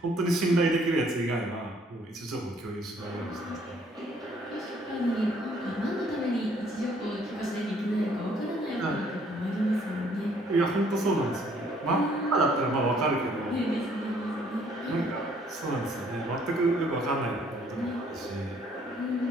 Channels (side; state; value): both; normal; correlation 0.63